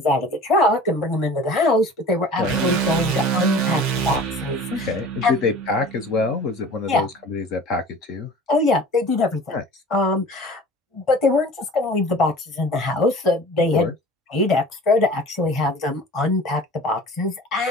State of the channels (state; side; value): normal; both; correlation 0.42